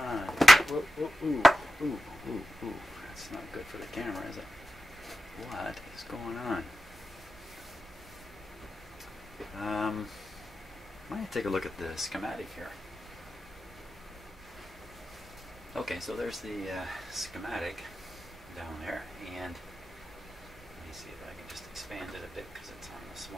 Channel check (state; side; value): normal; both; correlation 0.90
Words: Whoa, ooh. That's not good for the camera, is it? What is going on? Might take a look at the schematic here. Okay, so there's the schematic down there, and let me see if I can just expand it a bit because it's on a